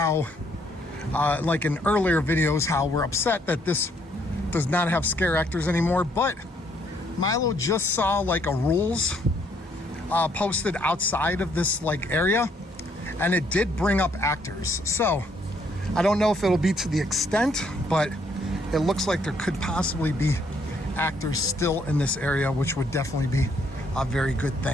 like in earlier videos, how we're upset that this does not have scare actors anymore. But Milo just saw like a rules posted outside of this like area, and it did bring up actors. So I don't know if it'll be to the extent, but it looks like there could possibly be actors still in this area, which would definitely be a very good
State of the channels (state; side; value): normal; both; correlation 0.69